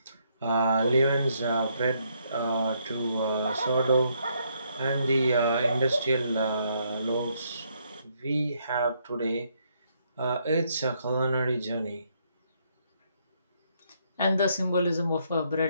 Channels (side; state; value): both; inverted; correlation -0.73